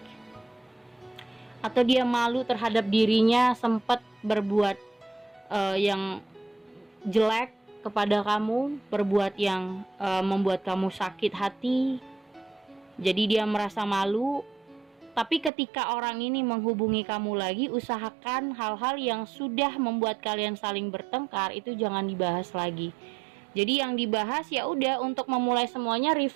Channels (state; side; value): drops out; left; at 15.5 s